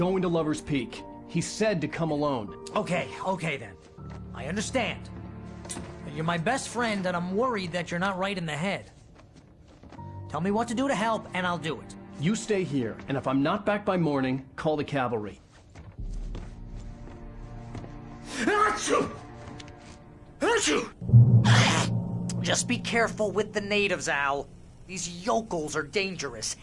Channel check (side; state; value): both; identical; correlation 1.00